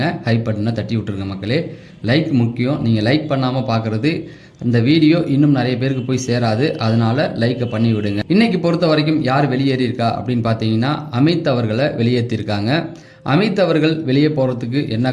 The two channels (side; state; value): both; identical; correlation 1.00